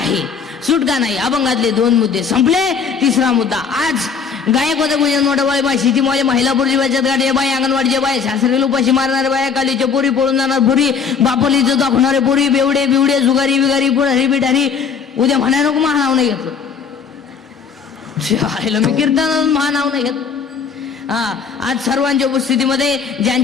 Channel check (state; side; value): quieter; right; 6.1 dB